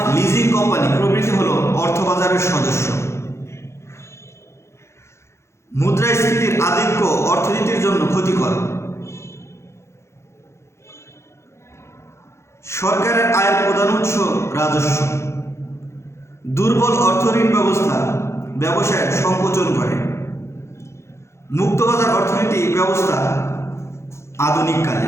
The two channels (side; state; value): right; late; 0.13 ms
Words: লিজিং কোম্পানি প্রভৃতি হল অর্থবাজারের সদস্য। মুদ্রাস্ফীতির আধিক্য অর্থনীতির জন্য ক্ষতিকর। সরকারের আয়ের প্রধান উৎস রাজস্ব। দুর্বল অর্থঋণ ব্যবস্থা ব্যবসায়ের সংকোচন করে। মুক্তবাজার অর্থনীতি ব্যবস্থা আধুনিক